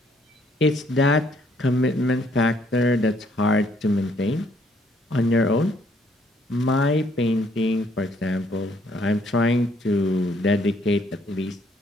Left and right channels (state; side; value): normal; both; correlation 0.66